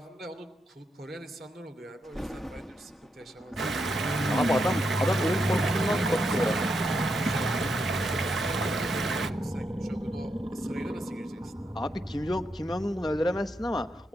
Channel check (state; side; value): normal; both; correlation 0.82